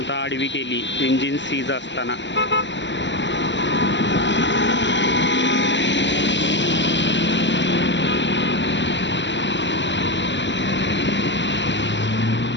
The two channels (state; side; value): late; right; 0.53 ms